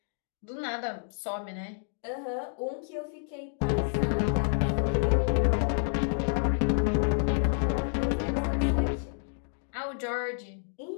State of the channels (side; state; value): right; silent; digital silence